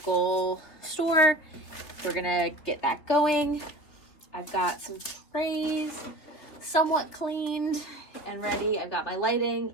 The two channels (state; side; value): late; right; 3.6 ms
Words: store. We're gonna get that going. I've got some trays somewhat cleaned and ready. I've got my